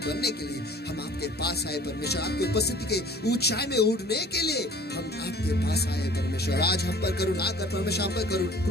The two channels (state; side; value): normal; both; correlation 0.49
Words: बनने के लिए हम आपके पास आए परमेश्वर। आपकी उपस्थिति के ऊंचाई में उड़ने के लिए हम आपके पास आए परमेश्वर। आज हम पर करुणा कर परमेश्वर, हम पर